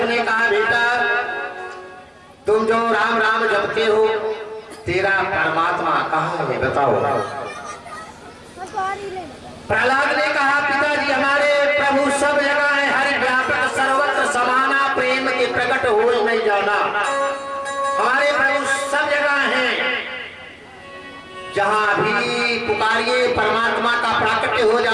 ने कहा, बेटा तुम जो राम राम जपते हो, तेरा परमात्मा कहाँ है बताओ। प्रहलाद ने कहा, पिताजी हमारे प्रभु सब जगह है, हर व्यापक सर्वत्र समाना प्रेम के प्रकट हो नहीं जाना। हमारे प्रभु सब जगह हैं, जहां भी पुकारिए परमात्मा का प्राकट्य हो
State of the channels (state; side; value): identical; both; correlation 1.00